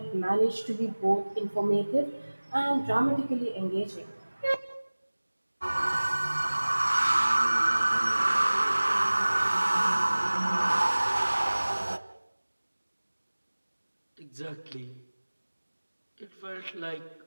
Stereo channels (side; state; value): both; inverted; correlation -1.00